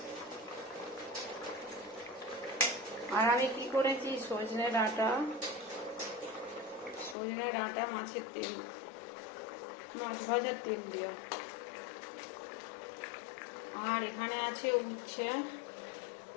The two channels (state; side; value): drops out; right; at 7.2 s